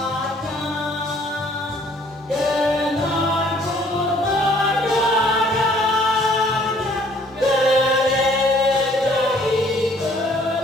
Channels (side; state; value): both; normal; correlation 0.59